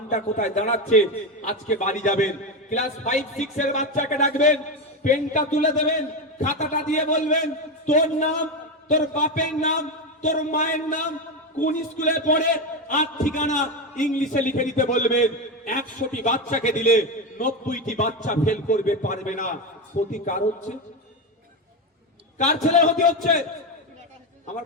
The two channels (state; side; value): normal; both; correlation 0.13